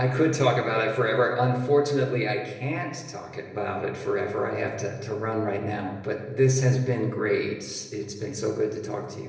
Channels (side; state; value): both; identical; correlation 1.00